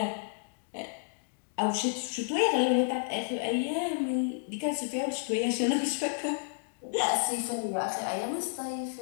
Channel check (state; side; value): silent; right; digital silence